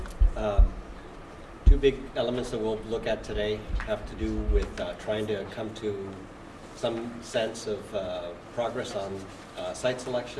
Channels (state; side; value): identical; both; correlation 1.00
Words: Two big elements that we'll look at today have to do with trying to come to some sense of progress on site